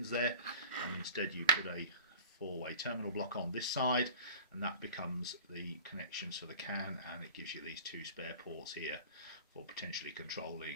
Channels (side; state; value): both; inverted; correlation -0.41